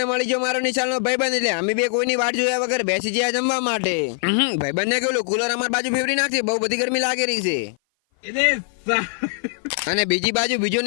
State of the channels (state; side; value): silent; right; 57 dB below the other